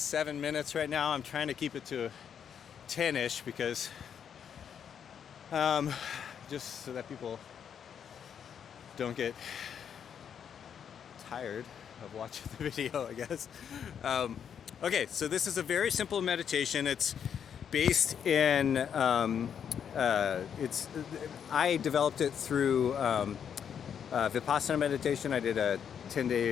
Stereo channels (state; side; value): quieter; right; 8.0 dB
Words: minutes right now. I'm trying to keep it to 10-ish because just so that people don't get tired of watching the video, I guess. Okay, so this is a very simple meditation. It's based in I developed it through Vipassana meditation. I did a